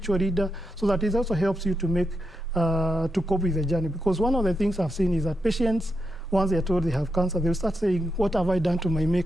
leader, so that it also helps you to make, to cope with the journey. Because one of the things I've seen is that patients, once they are told they have cancer, they'll start saying, what have I done to my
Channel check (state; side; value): normal; both; correlation 0.85